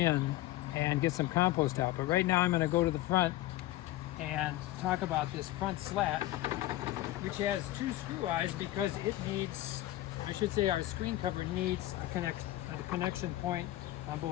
and get some compost out. But right now I'm going to go to the front and talk about this front slat, which has two screw eyes because it needs, I should say our screen cover needs a connection point on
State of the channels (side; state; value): right; quieter; 15.7 dB